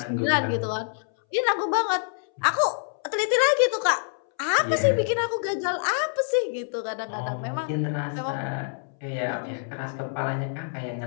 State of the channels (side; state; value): right; silent; 61 dB below the other